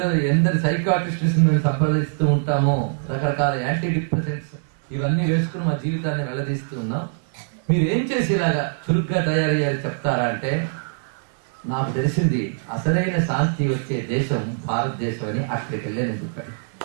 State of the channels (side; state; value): left; silent; digital silence